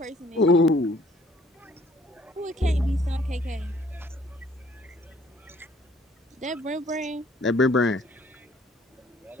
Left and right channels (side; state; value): both; normal; correlation 0.60